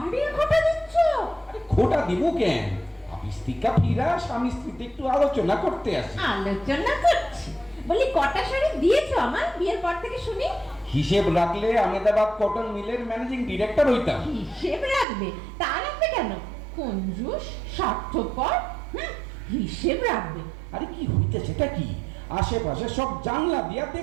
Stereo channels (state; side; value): drops out; left; at 15.1 s